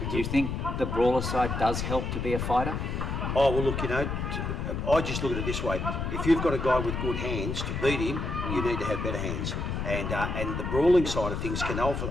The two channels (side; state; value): left; noise; rumble, 3 dB below the sound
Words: Do you think the brawler side does help to be a fighter? Oh, well, look, I just look at it this way. If you've got a guy with good hands, to beat him, you need to have better hands. And the brawling side of things can